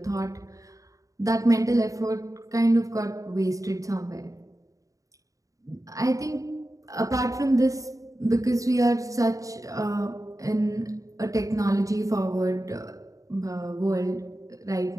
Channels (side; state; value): left; late; 0.16 ms